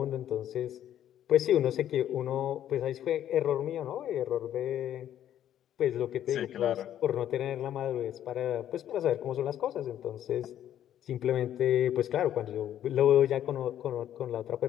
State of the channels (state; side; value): quieter; right; 11.1 dB